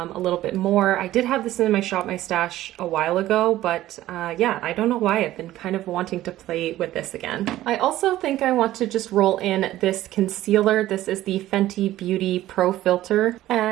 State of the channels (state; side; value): quieter; left; 14.7 dB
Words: little bit more. I did have this in my Shop My Stash a while ago, but yeah, I don't know why. I've been kind of wanting to play with this again. I also think I want to just roll in this concealer. This is the Fenty Beauty Pro Filt'r,